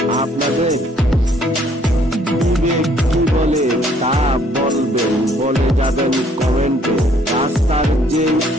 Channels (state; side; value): normal; both; correlation 0.63